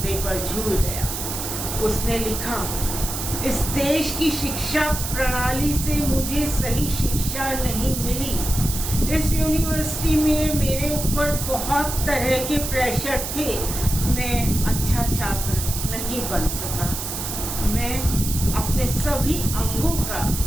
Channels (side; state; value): right; noise; hiss, 5 dB below the sound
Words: पर झूल गया। उसने लिखा, इस देश की शिक्षा प्रणाली से मुझे सही शिक्षा नहीं मिली। इस यूनिवर्सिटी में मेरे ऊपर बहुत तरह के प्रेशर थे। मैं अच्छा छात्र नहीं बन सका। मैं अपने सभी अंगों का